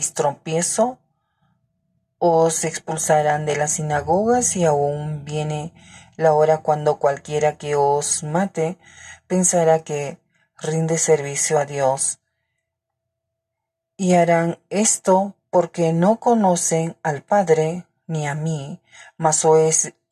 tropiezo. Os expulsarán de las sinagogas y aún viene la hora cuando cualquiera que os mate pensará que rinde servicio a Dios. Y harán esto porque no conocen al Padre ni a mí, mas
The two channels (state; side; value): identical; both; correlation 1.00